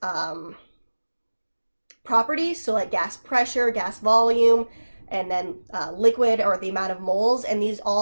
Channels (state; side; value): inverted; both; correlation -1.00